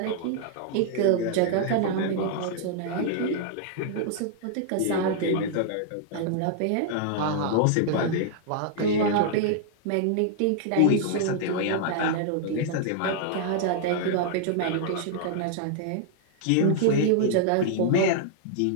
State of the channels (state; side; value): different; both; correlation -0.01